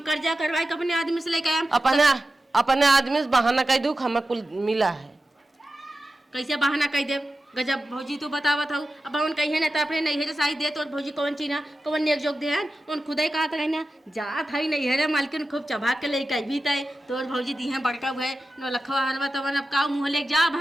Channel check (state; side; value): normal; both; correlation 0.93